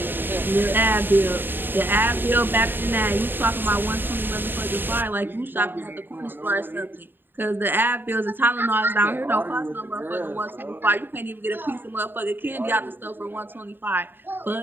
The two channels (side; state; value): left; late; 0.096 ms